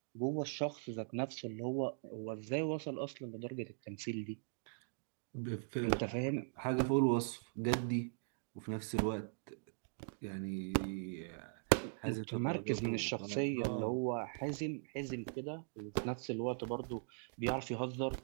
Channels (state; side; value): silent; left; digital silence